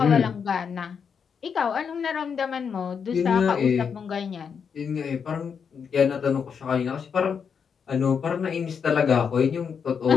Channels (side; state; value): right; quieter; 6.6 dB